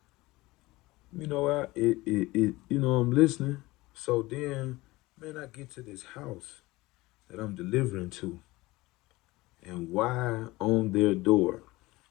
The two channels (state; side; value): quieter; right; 20.3 dB